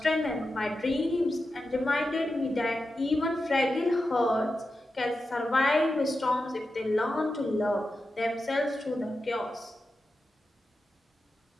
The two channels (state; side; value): normal; both; correlation 0.91